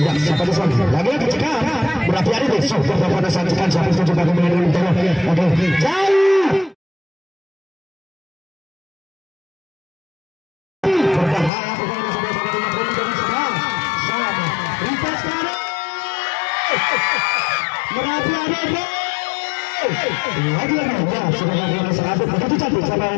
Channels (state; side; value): drops out; right; at 11.5 s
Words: siapa itu lagi cekat berhati-hati deh sudah pada saat cekat siapa itu coba bagaimana dia kita lagi jauh berbahaya pokoknya Merapi ada lagi-lagi ya sudah lakukan sahabat begitu cantik sama